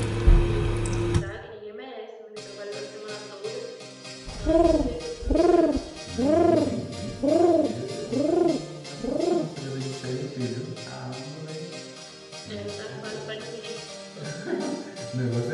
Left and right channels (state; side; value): identical; both; correlation 1.00